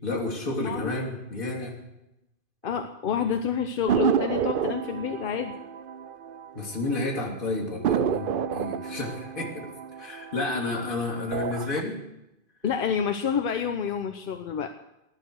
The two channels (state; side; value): late; left; 2.5 ms